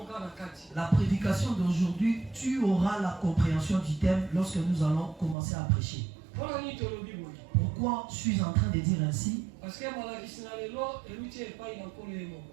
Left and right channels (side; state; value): left; drops out; at 5.4 s